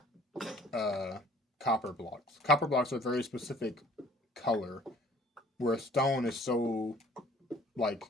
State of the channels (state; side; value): normal; both; correlation 0.54